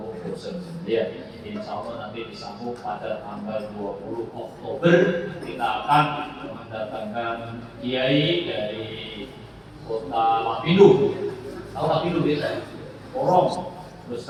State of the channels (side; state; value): both; identical; correlation 1.00